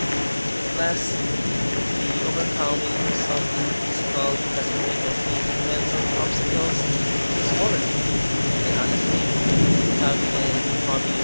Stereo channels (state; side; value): inverted; both; correlation -1.00